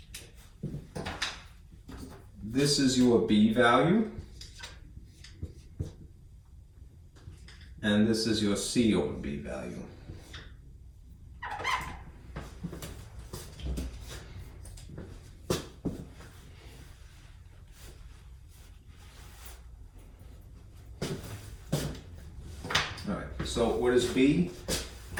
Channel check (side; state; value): both; identical; correlation 1.00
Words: This is your B value, and this is your C over B value. All right, so what is B?